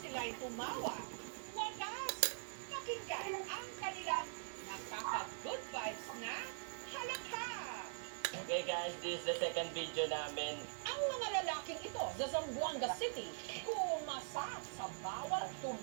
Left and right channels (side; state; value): left; silent; digital silence